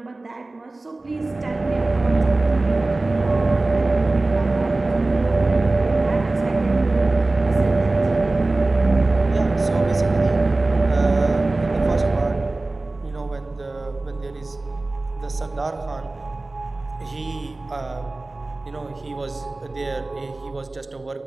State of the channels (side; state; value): left; quieter; 3.1 dB